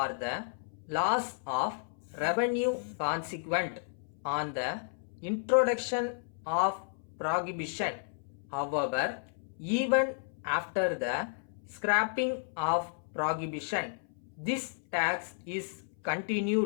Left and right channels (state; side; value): silent; right; 56 dB below the other